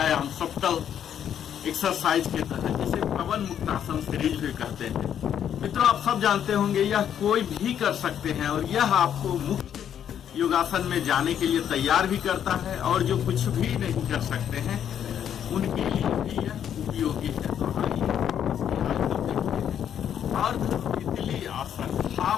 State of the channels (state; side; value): quieter; right; 9.3 dB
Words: सप्तल एक्सरसाइज के तहत, जिसे पवन मुक्तासन सीरीज भी कहते हैं। मित्रों, आप सब जानते होंगे यह कोई भी कर सकते हैं और यह आपको मुक्त योगासन में जाने के लिए तैयार भी करता है, और जो कुछ भी नहीं कर सकते हैं उनके लिए भी यह उपयोगी है। तो आइए अर्ध तितली आसन,